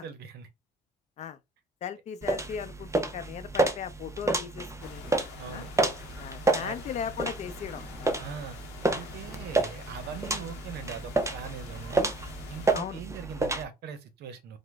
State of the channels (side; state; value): both; normal; correlation 0.51